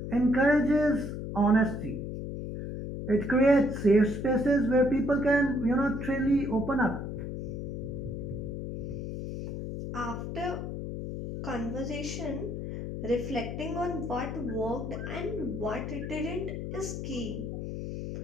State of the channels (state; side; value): noise; left; hum, 6 dB below the sound